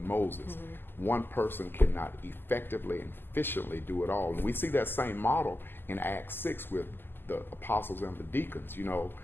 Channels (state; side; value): late; right; 0.098 ms